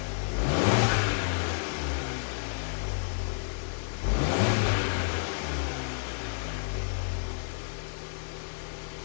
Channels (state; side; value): silent; right; digital silence